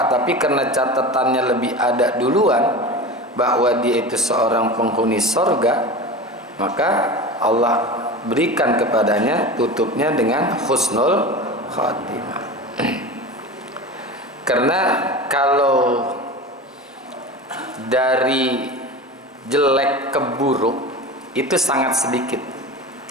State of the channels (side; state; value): both; normal; correlation 0.30